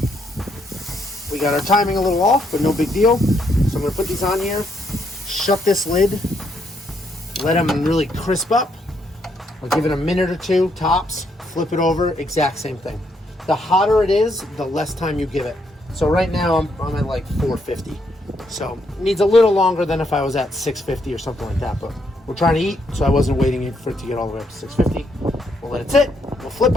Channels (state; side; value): normal; both; correlation 0.75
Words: we got our timing a little off, but no big deal. So I'm gonna put these on here, shut this lid, let them really crisp up. I'll give it a minute or two, tops, flip it over, exact same thing. The hotter it is, the less time you give it. So right now I'm at like 450. So it needs a little longer than if I was at 650 or something like that, but we're trying to eat, so I wasn't waiting for it to get all the way up to 650. We'll let it sit, we'll flip